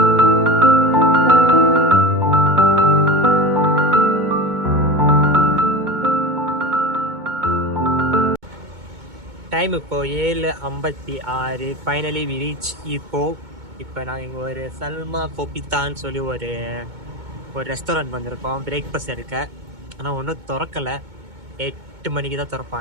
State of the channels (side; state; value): left; late; 2.2 ms